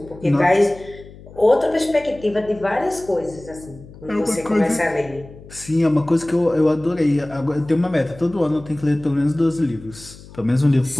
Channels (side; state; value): left; noise; hum, 19 dB below the sound